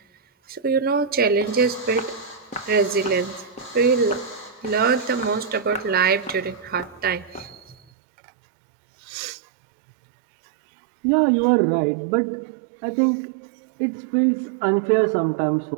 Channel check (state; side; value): drops out; left; at 7.8 s